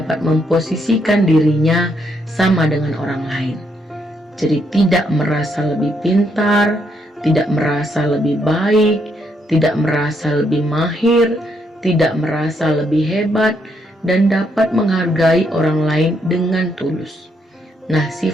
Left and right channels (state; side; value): normal; both; correlation 0.75